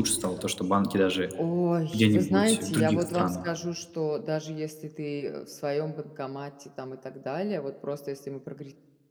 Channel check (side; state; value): both; identical; correlation 1.00